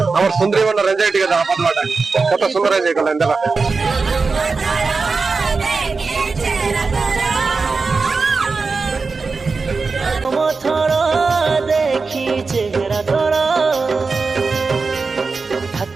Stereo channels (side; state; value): left; quieter; 4.3 dB